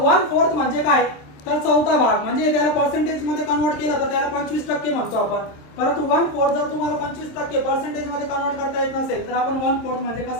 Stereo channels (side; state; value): right; late; 27 ms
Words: 1/4 म्हणजे काय, तर चौथा भाग. म्हणजे त्याला पर्सेंटेज मध्ये कन्वर्ट केलं तर त्याला 25% म्हणतो आपण. परंतु 1/4 जर तुम्हाला 25% पर्सेंटेज मध्ये कन्वर्ट करता येत नसेल तर आपण 1/4 म्हणजे